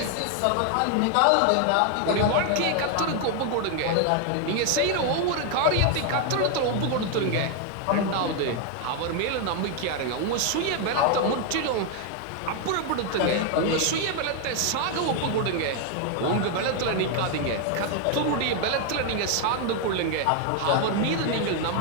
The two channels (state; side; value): different; both; correlation 0.00